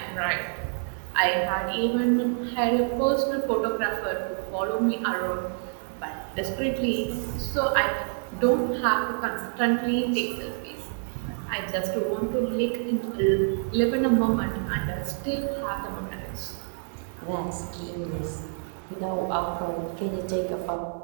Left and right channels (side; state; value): left; silent; 60 dB below the other